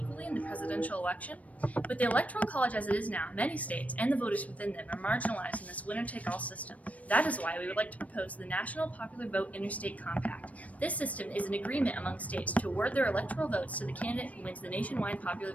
in the presidential election? With the Electoral College as it is now, many states and the voters within them are marginalized in this winner-take-all system. That is why we would like to propose the National Popular Vote Interstate Compact. This system is an agreement among states to award their electoral votes to the candidate who wins the nationwide popular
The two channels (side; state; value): right; late; 0.068 ms